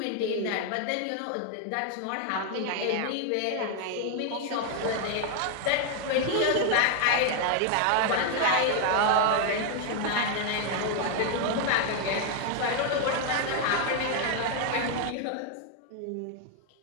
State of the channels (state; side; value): different; both; correlation 0.00